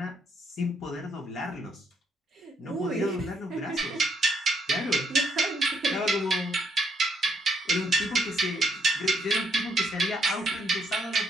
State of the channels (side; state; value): both; normal; correlation 0.72